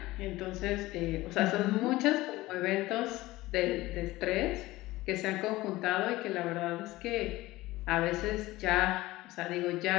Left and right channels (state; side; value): quieter; right; 18.5 dB